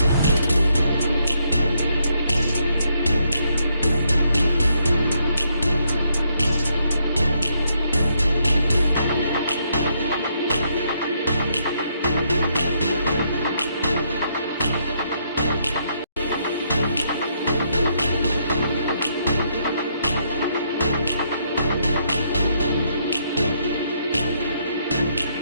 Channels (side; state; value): both; inverted; correlation -0.74